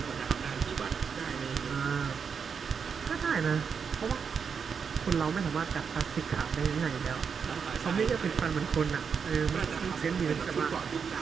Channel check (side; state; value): left; quieter; 6.3 dB